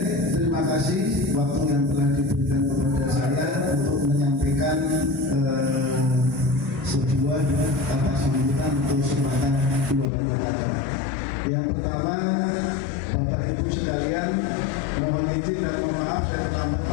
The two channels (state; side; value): drops out; right; at 10.1 s